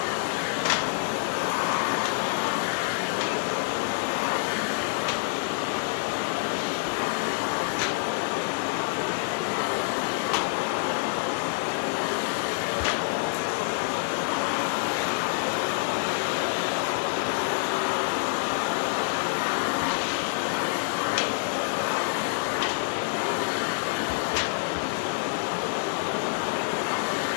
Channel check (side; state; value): right; silent; 58 dB below the other